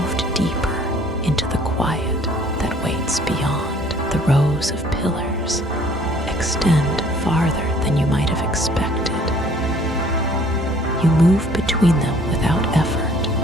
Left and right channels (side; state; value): both; normal; correlation 0.57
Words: deeper into the quiet that waits beyond. The rows of pillars extend farther than you might have expected. You move between them without